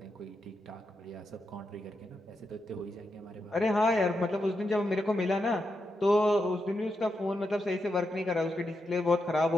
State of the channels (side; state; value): both; normal; correlation 0.85